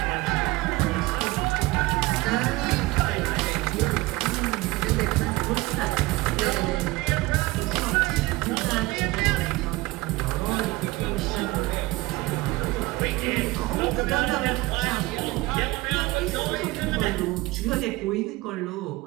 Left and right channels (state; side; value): quieter; left; 20.6 dB